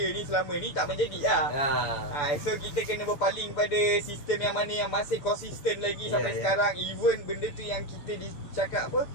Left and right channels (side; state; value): right; late; 6.9 ms